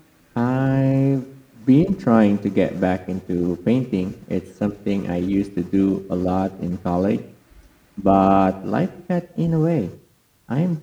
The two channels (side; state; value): both; identical; correlation 1.00